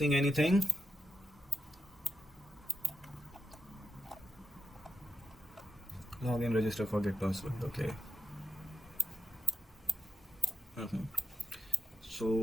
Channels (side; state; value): both; normal; correlation 0.87